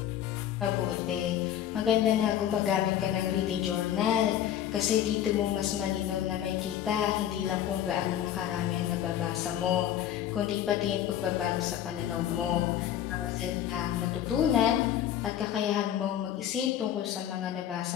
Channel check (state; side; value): quieter; right; 11.0 dB